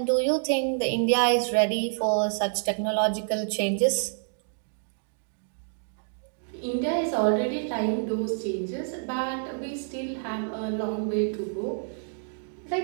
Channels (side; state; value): left; silent; digital silence